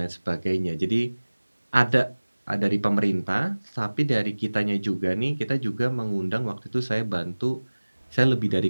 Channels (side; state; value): both; inverted; correlation -1.00